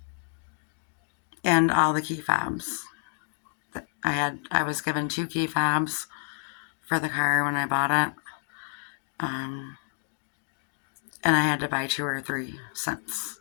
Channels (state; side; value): silent; right; 59 dB below the other